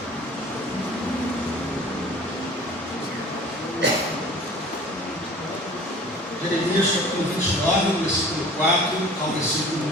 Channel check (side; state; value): both; normal; correlation 0.45